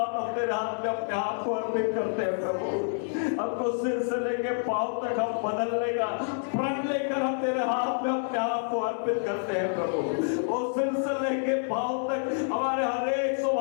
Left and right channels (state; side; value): silent; right; 58 dB below the other